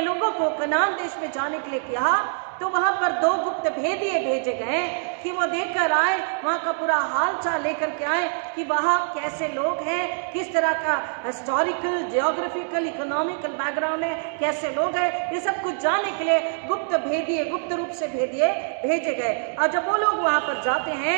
लोगों को कनान देश में जाने के लिए कहा तो वहां पर 2 गुप्त भेदिए भेजे गए कि वो देखकर आए, वहां का पूरा हाल चाल लेकर के आए कि वहां कैसे लोग हैं, किस तरह का हिस्टोरिकल, जियोग्राफिकल, इकोनॉमिकल बैकग्राउंड है, कैसे लोग हैं, ये सब कुछ जानने के लिए गुप्त भेदिए, गुप्त रूप से भेदिए भेजे गए। और जब वो लोग वहां पर जाते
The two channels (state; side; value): silent; left; 62 dB below the other